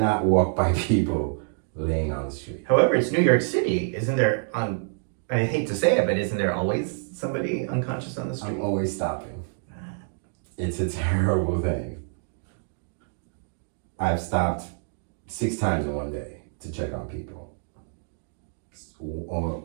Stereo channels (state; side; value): silent; left; digital silence